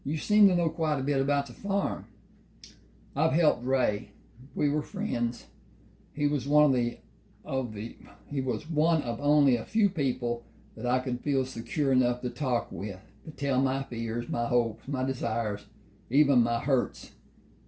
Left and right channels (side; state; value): both; identical; correlation 1.00